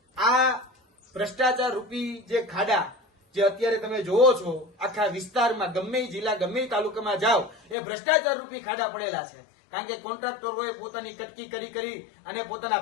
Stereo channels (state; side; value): drops out; right; at 7.8 s